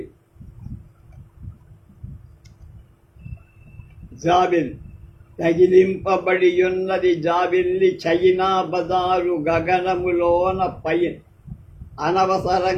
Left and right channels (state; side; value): identical; both; correlation 1.00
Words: జాబిల్. తగిలింపబడియున్నది జాబిల్లి చైనా బజారు గగనములోన పైన.